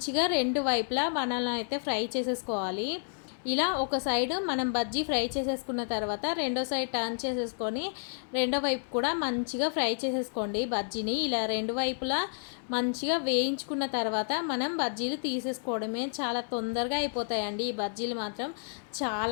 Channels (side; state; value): right; silent; 58 dB below the other